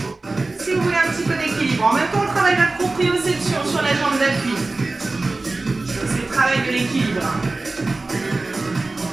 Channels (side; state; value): left; quieter; 3.3 dB